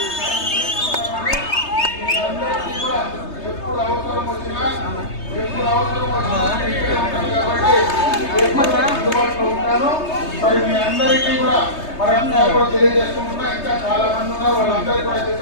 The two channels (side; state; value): right; late; 3.3 ms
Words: ఎప్పుడు అవసరం వచ్చినా కాబట్టి అందుబాటులో ఉంటాను. మరి మీ అందరికీ కూడా మరంతా కూడా తెలియజేసుకుంటున్నా. ఇంకా చాలా మంది ఉన్నారు, వాళ్ళందరికీ కూడా